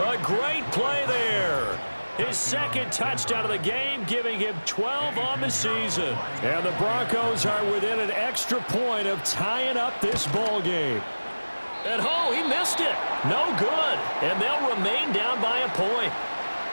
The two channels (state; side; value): inverted; both; correlation -1.00